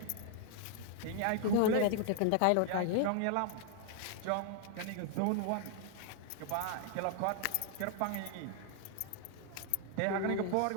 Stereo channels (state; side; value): different; both; correlation 0.00